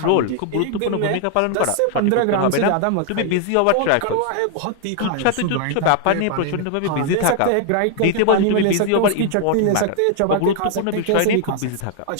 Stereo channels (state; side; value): different; both; correlation 0.00